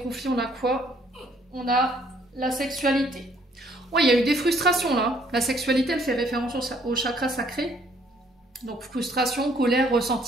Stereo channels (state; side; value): normal; both; correlation 0.64